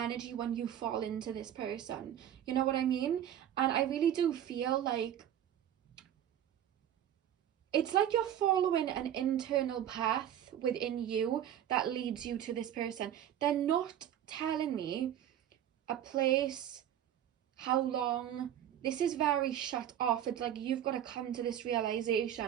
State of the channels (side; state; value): left; quieter; 10.7 dB